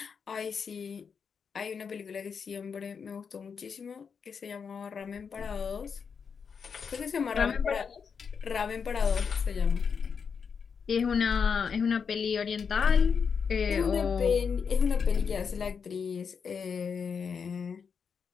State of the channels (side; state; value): right; quieter; 6.2 dB